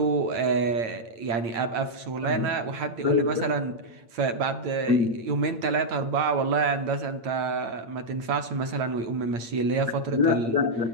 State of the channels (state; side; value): late; left; 8.7 ms